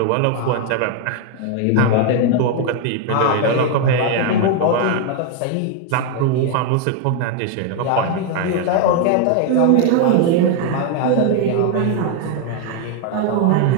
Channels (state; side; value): different; both; correlation 0.00